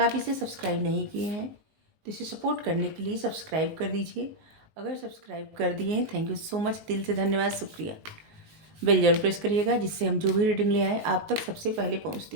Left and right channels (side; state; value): left; late; 19 ms